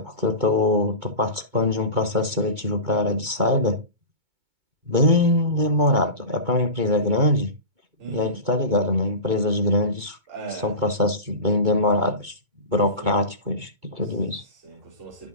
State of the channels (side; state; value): left; late; 2.2 ms